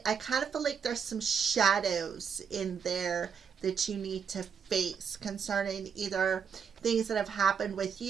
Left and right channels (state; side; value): quieter; left; 6.9 dB